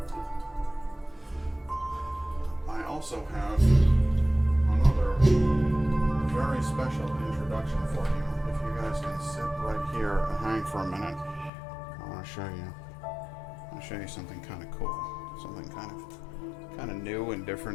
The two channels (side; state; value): right; drops out; at 11.5 s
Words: I also have another very special introduction for you. If you guys can sit right here and hang for a minute, I want to show you. I want to show you something kind of cool, something kind of new and